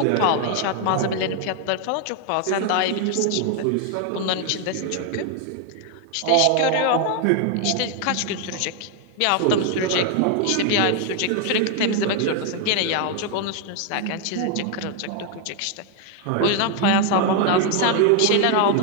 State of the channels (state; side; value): different; both; correlation 0.01